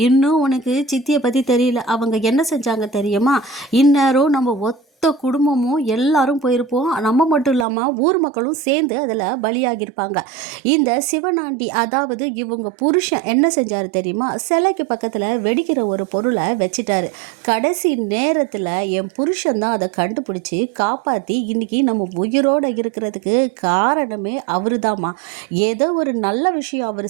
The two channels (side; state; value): left; drops out; at 7.7 s